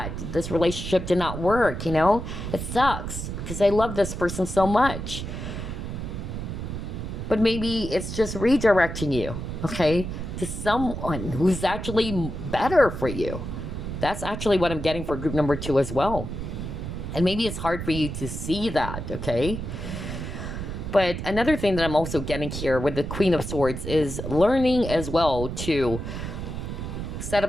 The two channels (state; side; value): noise; right; rumble, 6 dB below the sound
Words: This relationship did not work, It sucks because I love this person so much. But maybe it's just redirecting you, okay, to someone who's actually better for you. That's actually what I'm getting for group number 2 as well. And maybe it's hard for you to see that, okay? But another thing that I'm also getting here with the Queen of Swords is learning as well to set